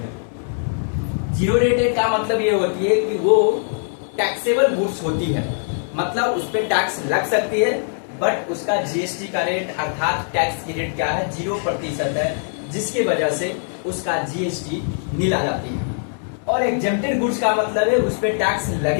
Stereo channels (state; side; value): silent; right; digital silence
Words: जीरो रेटेड का मतलब ये होती है कि वो टैक्सेबल गुड्स होती है, मतलब उस पर टैक्स लग सकती है, बट उसका जीएसटी का रेट अर्थात टैक्स की रेट क्या है, 0% है, जिसकी वजह से उसका जीएसटी नील आ जाती है। और एग्जेम्प्टेड गुड्स का मतलब है उस पर टैक्स